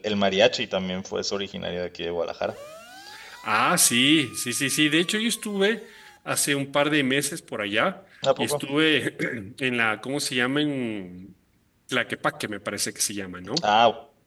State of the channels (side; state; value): both; identical; correlation 1.00